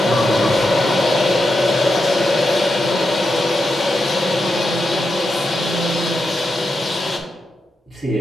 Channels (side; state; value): both; normal; correlation 0.86